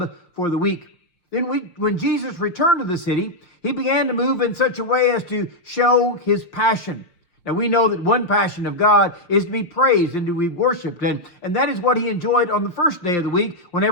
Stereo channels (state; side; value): late; right; 5.7 ms